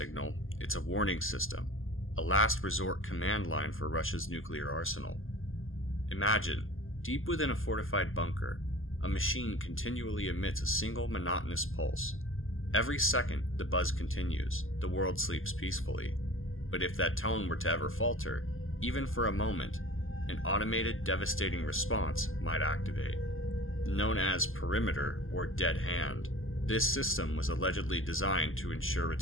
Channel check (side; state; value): right; late; 0.59 ms